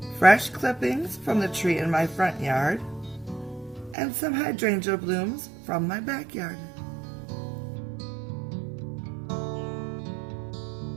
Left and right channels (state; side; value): drops out; left; at 4.0 s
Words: fresh clippings from the tree in my front yard, and some hydrangea blooms from my backyard.